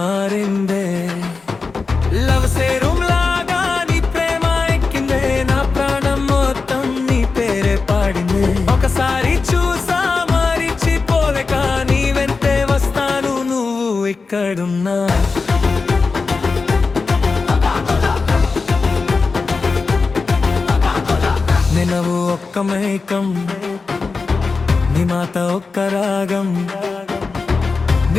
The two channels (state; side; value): quieter; right; 4.4 dB